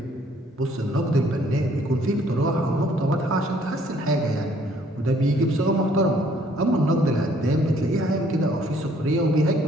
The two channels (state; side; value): normal; both; correlation 0.62